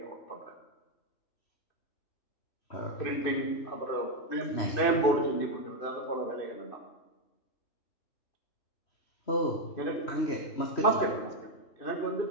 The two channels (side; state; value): right; late; 2.6 ms